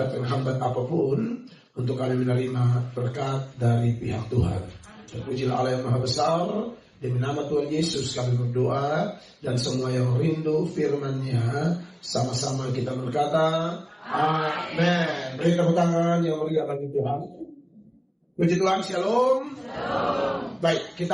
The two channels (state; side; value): identical; both; correlation 1.00